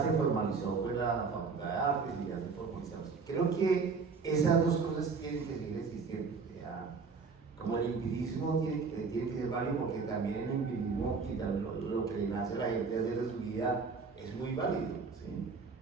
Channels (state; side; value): quieter; left; 4.9 dB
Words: se formalizó pues, la Facultad de Artes, y ya se formalizó. Creo que esas dos cosas tienen que seguir existiendo. Como el empirismo tiene que ser válido, porque también el empirismo y lo que le nace a la gente hacer de su vida es muy válido, ¿sí?